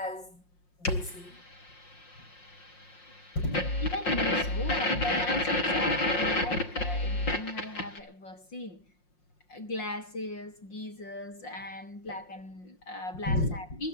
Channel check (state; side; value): late; right; 5.6 ms